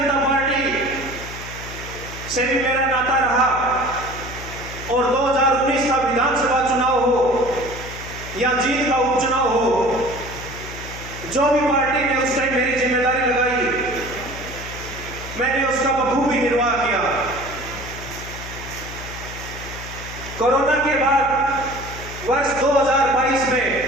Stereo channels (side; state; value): left; noise; hum, 12 dB below the sound